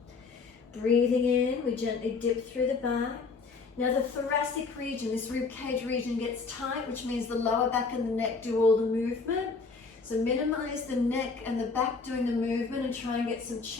Breathing in, we gently dip through the back. Now the thoracic region, this rib cage region, gets tight, which means the lower back and the neck do all the movement. So minimize the neck and the back doing the movement and try and get some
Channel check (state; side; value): quieter; right; 4.5 dB